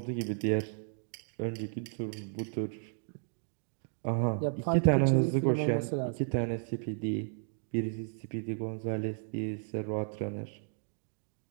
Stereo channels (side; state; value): left; silent; digital silence